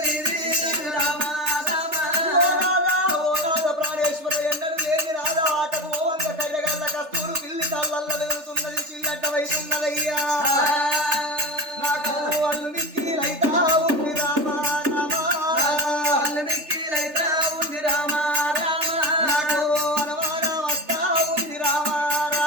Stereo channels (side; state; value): left; late; 3.3 ms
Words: రామ రామ ఓ నాద ప్రాణేశ్వర ఎన్నడూ లేని నాద ఆటకు ఓవంగ కళ్ళగల్ల కస్తూరు పిల్లి కళ్ళల్ల వెలుగుతున్నది చిల్లడ్డవైతున్నదయ్యా నాకు అల్లు మిక్కిలైతా ఉంది రామ రామ అల్లమిక్కిలైతా ఉంది రామ రామ నాకు అనుమాన వస్తా ఉంది రామ